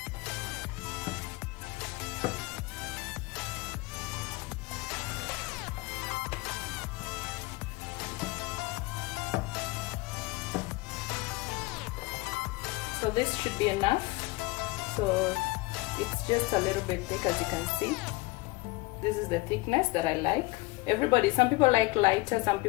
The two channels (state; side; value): quieter; right; 22.6 dB